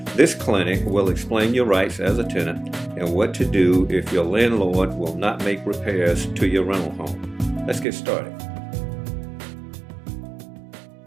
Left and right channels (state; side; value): drops out; left; at 7.9 s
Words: This clinic will explain your rights as a tenant and what to do if your landlord will not make repairs to your rental home. Let's get started.